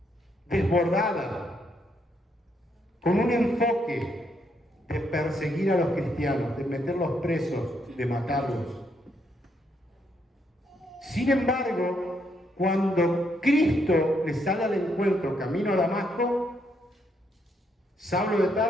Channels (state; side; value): normal; both; correlation 0.75